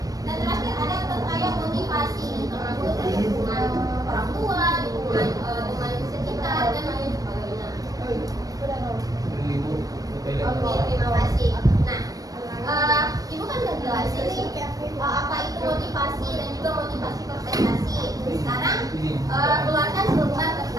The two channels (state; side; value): late; left; 0.18 ms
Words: Dan terakhir ada terkait motivasi, termasuk dari hubungan orang tua, hubungan teman sekitar, dan lain sebagainya. Oke, terima kasih. Nah, Ibu kan udah jelasin nih apa itu motivasi dan juga motivasi berprestasi. Sekarang keluarkan selembar